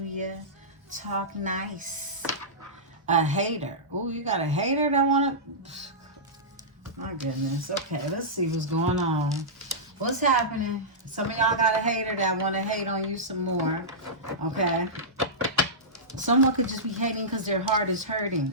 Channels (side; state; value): both; normal; correlation -0.15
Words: Talk nice. A hater. Oh, you got a hater that want to... My goodness. Okay, let's see what's going on. What's happening? Some of y'all got a hater that want to hate on you some more. Okay? Someone could just be hating because their heart is hurting.